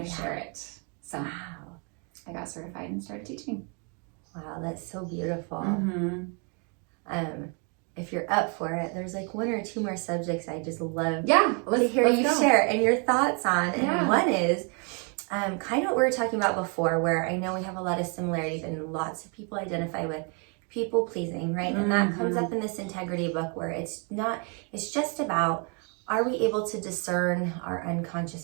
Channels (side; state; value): left; quieter; 36.4 dB